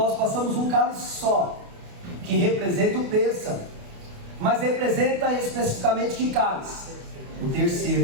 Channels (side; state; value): left; late; 28 ms